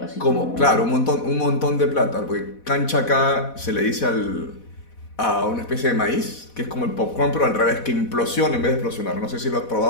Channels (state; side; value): late; right; 4.1 ms